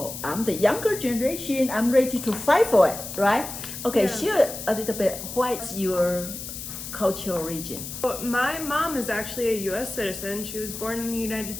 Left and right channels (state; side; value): noise; left; hiss, 9 dB below the sound